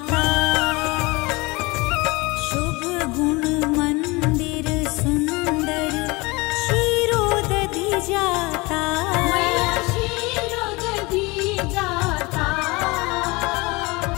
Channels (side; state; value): right; quieter; 24.6 dB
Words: शुभ गुण मंदिर सुंदर, क्षीरोदधि जाता, मैया क्षीरोदधि जाता,